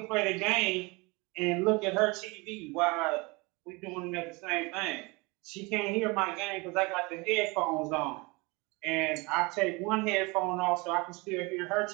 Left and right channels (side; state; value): left; quieter; 26.2 dB